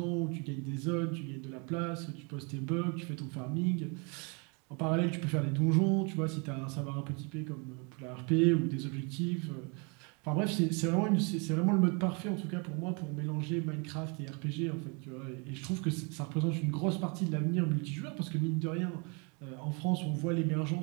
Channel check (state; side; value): quieter; left; 33.4 dB